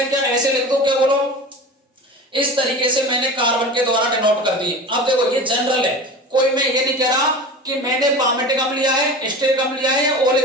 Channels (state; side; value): normal; both; correlation 0.33